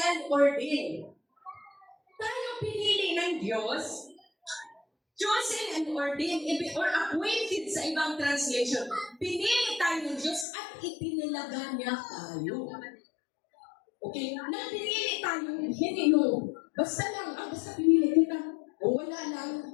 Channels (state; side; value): drops out; right; at 10.5 s